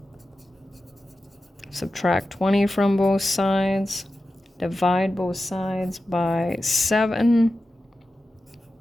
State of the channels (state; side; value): normal; both; correlation 0.93